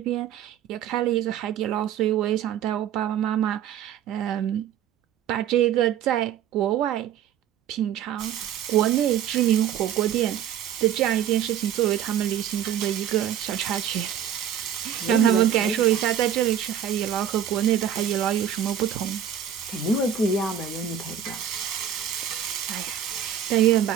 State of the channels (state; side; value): quieter; left; 9.6 dB